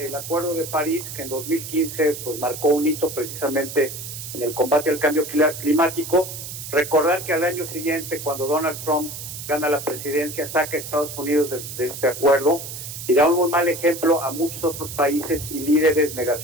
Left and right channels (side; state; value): right; noise; hiss, 9 dB below the sound